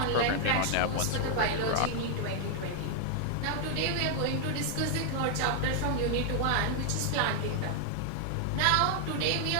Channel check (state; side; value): different; both; correlation 0.00